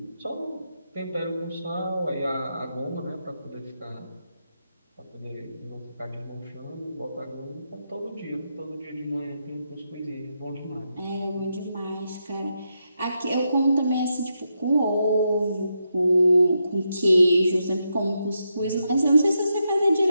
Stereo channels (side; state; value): both; inverted; correlation -0.84